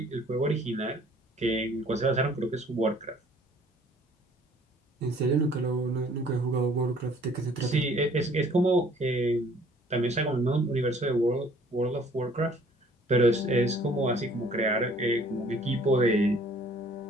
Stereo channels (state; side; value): normal; both; correlation 0.56